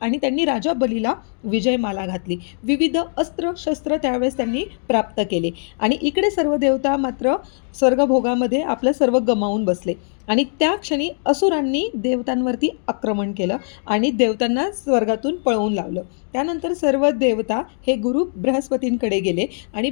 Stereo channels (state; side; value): silent; right; 65 dB below the other